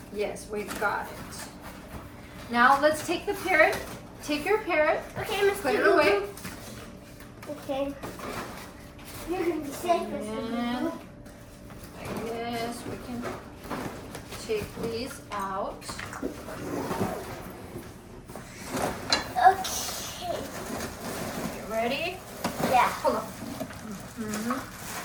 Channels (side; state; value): both; identical; correlation 1.00